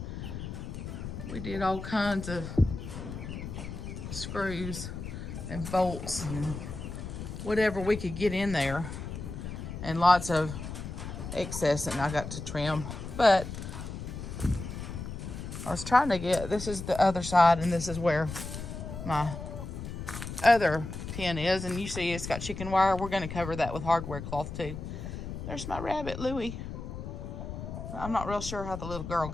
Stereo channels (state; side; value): noise; left; rumble, 8 dB below the sound